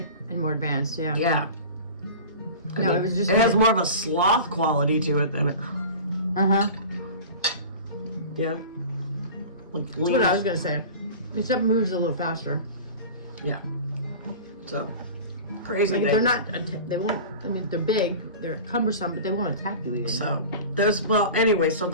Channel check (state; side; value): inverted; both; correlation -0.36